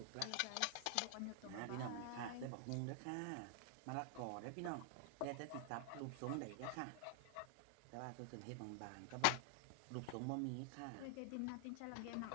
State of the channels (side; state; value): both; different; correlation 0.00